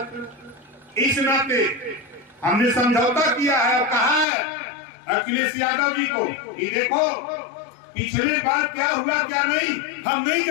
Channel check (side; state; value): right; drops out; at 4.2 s